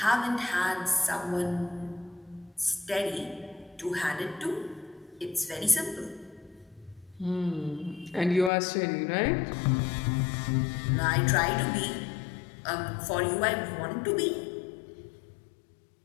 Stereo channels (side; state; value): right; drops out; at 8.5 s